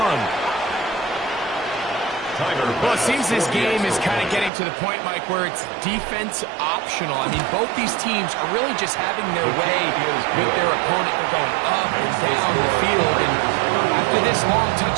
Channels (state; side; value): drops out; left; at 4.5 s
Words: Well, it seems this game is kind of getting to the point, Mike, where it's defense optional. I mean, both these teams are really just having their way with their opponent. They're going up and down the field. And after this long